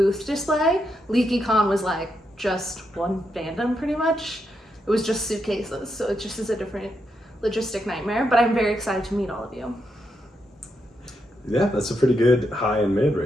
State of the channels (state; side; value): normal; both; correlation 0.82